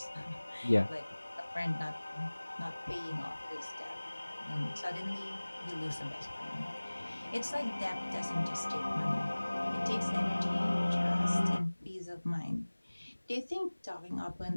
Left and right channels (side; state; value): both; inverted; correlation -1.00